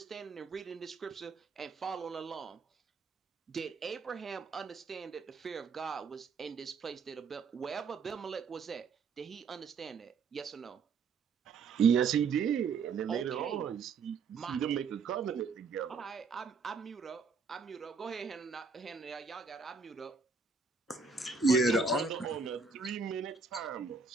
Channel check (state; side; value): quieter; left; 5.0 dB